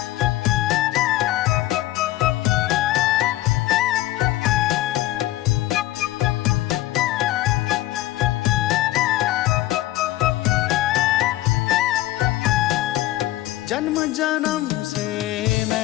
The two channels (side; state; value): right; quieter; 15.7 dB